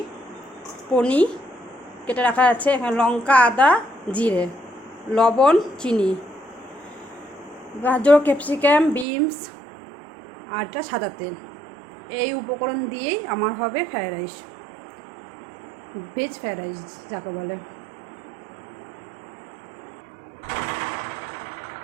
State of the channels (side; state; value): left; drops out; at 9.1 s